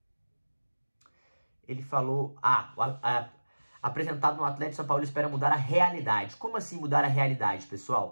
ele falou... apresentado no Atlético São Paulo, espera mudar a realidade. Como assim mudar a realidade,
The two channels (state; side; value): inverted; both; correlation -1.00